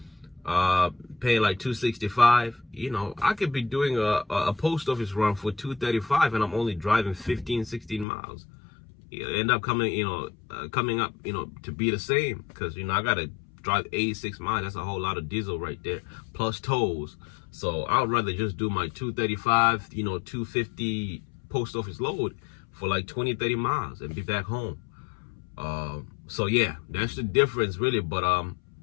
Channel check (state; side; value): drops out; right; at 8.1 s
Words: Paying like $265. You know, I could be doing a post office run for $235, and I'm only driving 15, 16 miles. It'll end up coming up, to be the same, because I gotta drive 86 miles. That's a whole lot of diesel right there, plus tolls. So I would rather just do my 235, 250 post office load for like 20, 30 miles and be back home. So yeah, that's the difference really. But I